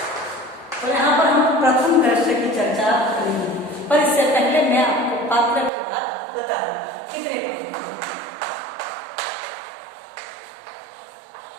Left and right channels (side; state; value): left; drops out; at 5.7 s